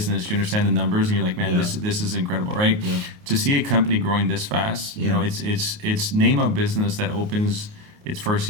you understand the numbers, and you're like, man, this is incredible, right? Yeah. To see a company growing this fast, it's name a business that opens its first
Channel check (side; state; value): left; late; 28 ms